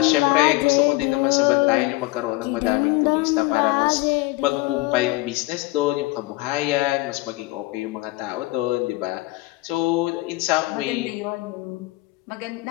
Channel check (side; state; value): right; quieter; 19.9 dB